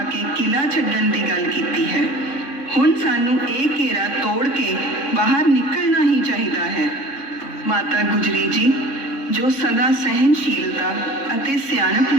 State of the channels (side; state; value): right; late; 3.6 ms